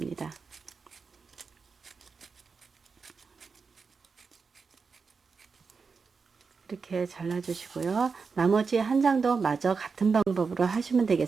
이렇게 잘라주시고요. 나머지 한 장도 마저 같은 방법으로 하시면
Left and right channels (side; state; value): left; quieter; 5.1 dB